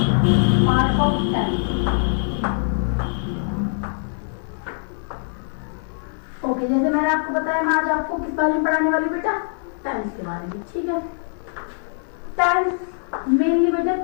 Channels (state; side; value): silent; right; digital silence